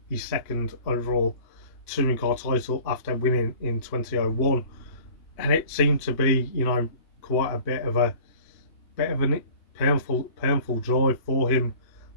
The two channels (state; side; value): late; right; 2.8 ms